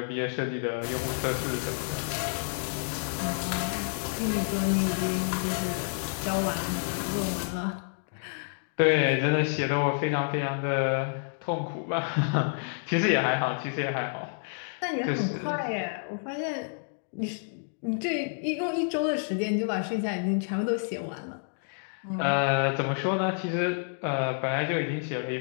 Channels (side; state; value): right; silent; digital silence